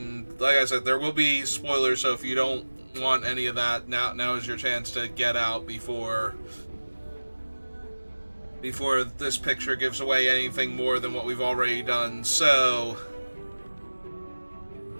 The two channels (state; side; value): inverted; both; correlation -1.00